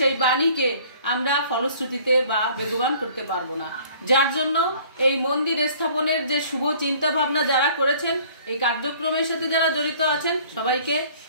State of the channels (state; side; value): inverted; both; correlation -0.53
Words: বাণীকে আমরা ফলশ্রুতিতে বা বেগবান করতে পারবো না। যার জন্য এই মন্দির স্থাপনের যে শুভ চিন্তা ভাবনা যারা করেছেন, এই কার্যক্রমের সাথে যারা জড়িত আছেন সবাইকে